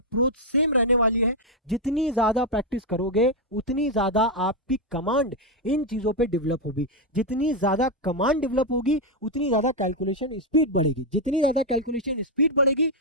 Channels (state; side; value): normal; both; correlation 0.02